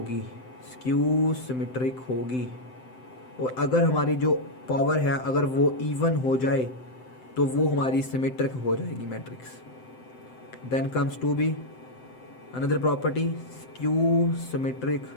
होगी। और अगर हमारी जो पावर है अगर वो इवन हो जाए तो वो हमारी सिमेट्रिक हो जाएगी matrix. Then comes to be another property, skew symmetric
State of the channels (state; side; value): late; right; 7.8 ms